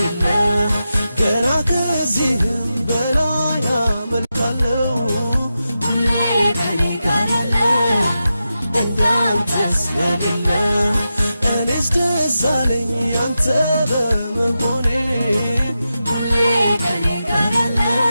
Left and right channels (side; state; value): both; inverted; correlation -0.90